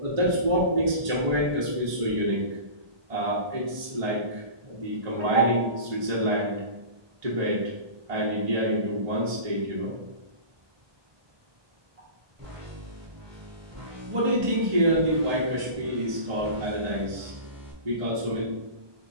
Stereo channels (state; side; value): late; left; 1.2 ms